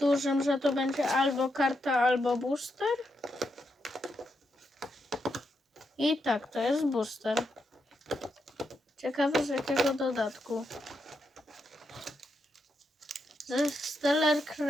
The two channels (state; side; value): normal; both; correlation 0.83